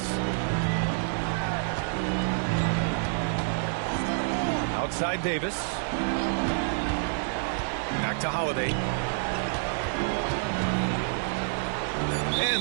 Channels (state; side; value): silent; left; digital silence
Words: Outside Davis. Back to Holiday.